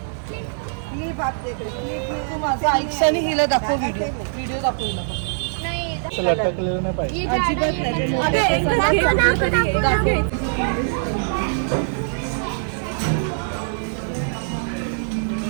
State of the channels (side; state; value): left; silent; digital silence